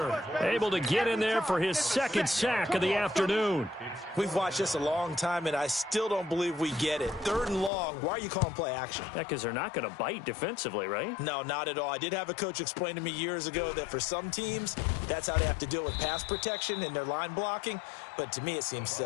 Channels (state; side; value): drops out; right; at 7.7 s